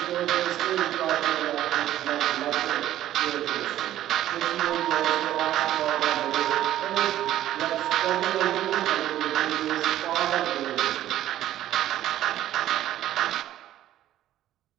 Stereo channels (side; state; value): left; quieter; 12.9 dB